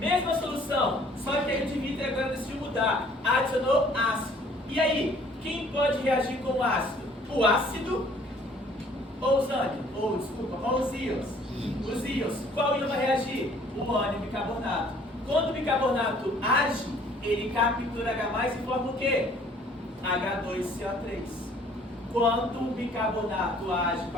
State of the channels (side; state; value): both; normal; correlation 0.57